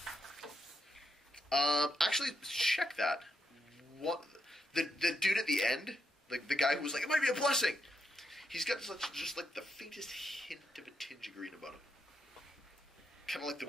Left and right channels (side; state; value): both; normal; correlation 0.82